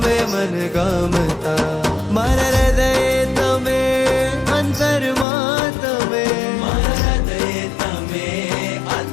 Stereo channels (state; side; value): drops out; right; at 5.2 s